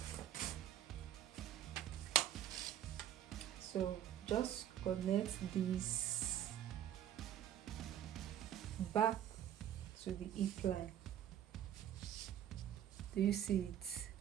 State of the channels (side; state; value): left; quieter; 11.1 dB